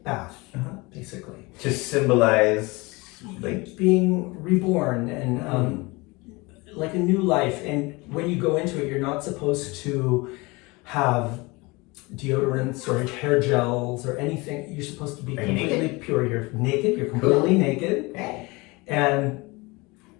bath, basically. To symbolize like being reborn and like a new life. And when you go into it, you're not supposed to have deodorants or hair gels or anything. You're supposed to be completely pure. You're naked. You're completely naked. And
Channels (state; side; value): quieter; right; 24.7 dB